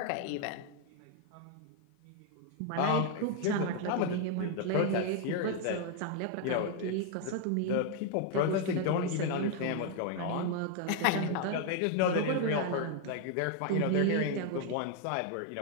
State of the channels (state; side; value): different; both; correlation 0.00